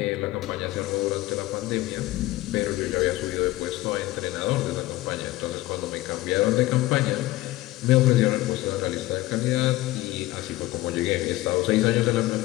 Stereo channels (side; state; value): right; quieter; 17.6 dB